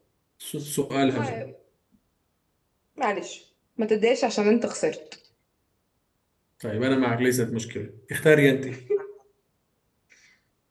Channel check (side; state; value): both; identical; correlation 1.00